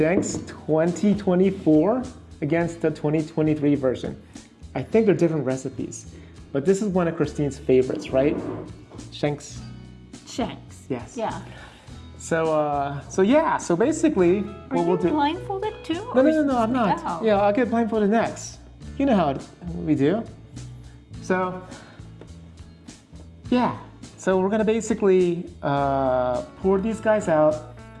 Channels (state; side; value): identical; both; correlation 1.00